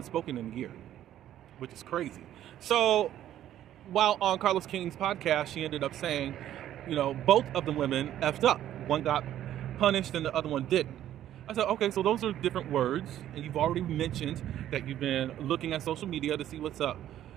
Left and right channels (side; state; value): left; quieter; 11.9 dB